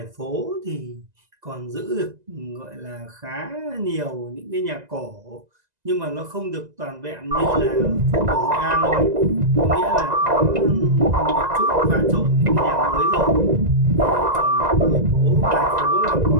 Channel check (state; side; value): late; left; 2.0 ms